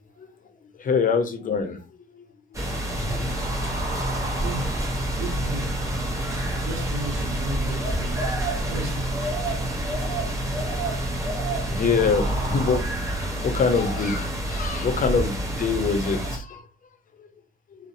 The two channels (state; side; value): normal; both; correlation 0.50